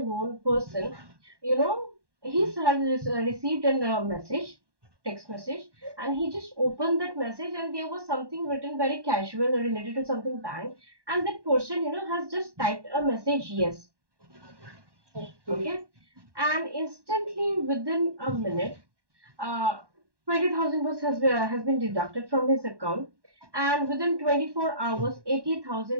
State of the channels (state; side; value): late; left; 1.2 ms